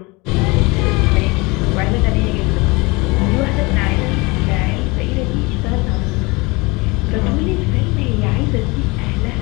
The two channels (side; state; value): right; quieter; 25.4 dB